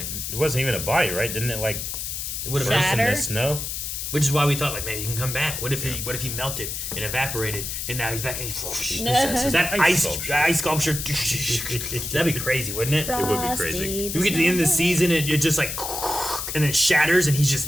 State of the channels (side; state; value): left; noise; hiss, 5 dB below the sound